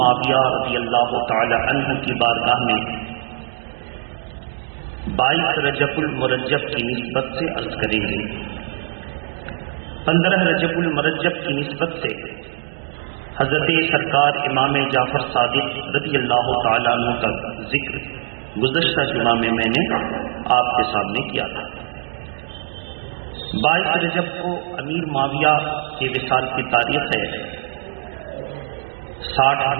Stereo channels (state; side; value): silent; left; digital silence